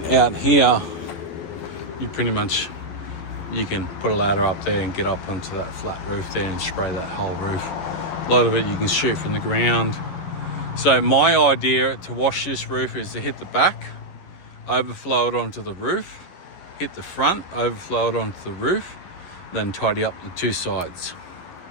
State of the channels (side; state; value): right; late; 11 ms